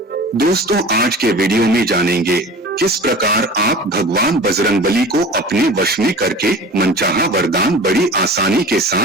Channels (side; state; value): both; normal; correlation 0.38